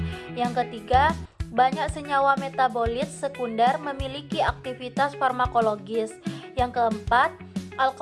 Yang ketiga, banyak senyawa metabolit sekunder memiliki aktivitas farmakologis. Yang keempat,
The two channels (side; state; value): both; identical; correlation 1.00